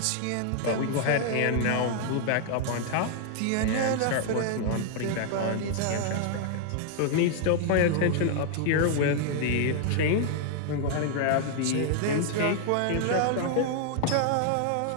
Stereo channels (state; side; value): different; both; correlation 0.00